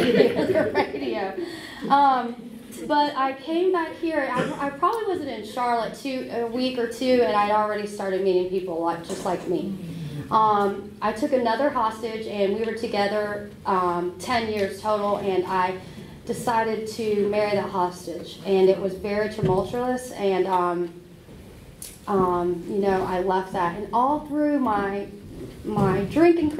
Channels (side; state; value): both; identical; correlation 1.00